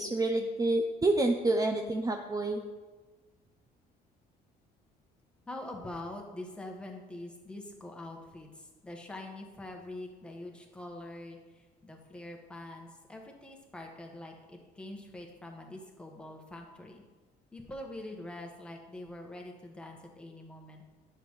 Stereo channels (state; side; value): normal; both; correlation 0.79